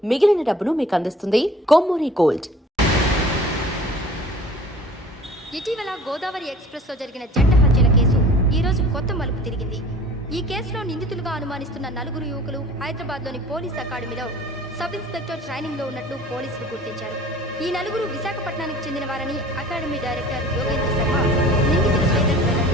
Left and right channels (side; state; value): both; normal; correlation 0.47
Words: మిగిలిన డబ్బును మీకు అందిస్తుంది కొమ్మూరి గోల్డ్. ఇటీవల గోదావరి ఎక్స్ప్రెస్ లో జరిగిన జంట హత్యల కేసు ఈ రోజు కొత్త మలుపు తిరిగింది. ఈ కేసులో నిందితులుగా అనుమానిస్తున్న 4 యువకులు హైదరాబాద్ లోని పోలీస్ అకాడమీలో సబ్ ఇన్స్పెక్టర్ ట్రైనింగ్ లో ఉన్నట్లు పోలీసులు గుర్తించారు. ఈ 4 విశాఖపట్నానికి చెందిన వారని అకాడమీ డైరెక్టర్ యోగేంద్ర శర్మ నిందితుల పేర్లను